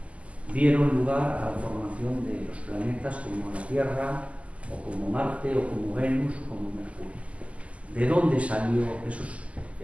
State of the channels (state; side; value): late; left; 0.064 ms